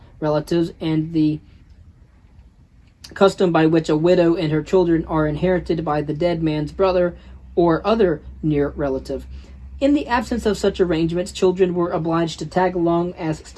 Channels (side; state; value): both; identical; correlation 1.00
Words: relatives, and the custom by which a widow and her children are inherited by the dead man's brother or other near relative. In the absence of such arrangements, children were obliged to tag along as